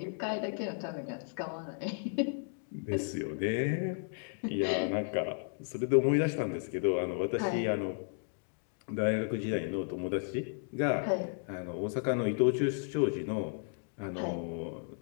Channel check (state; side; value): silent; right; digital silence